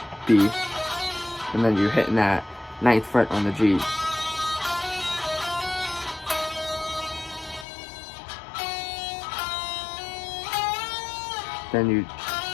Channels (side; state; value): right; drops out; at 7.7 s